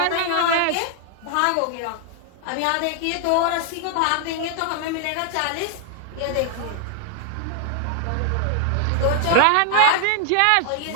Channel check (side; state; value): both; different; correlation 0.00